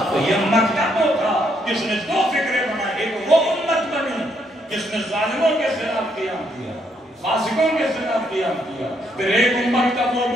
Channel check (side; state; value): both; normal; correlation 0.73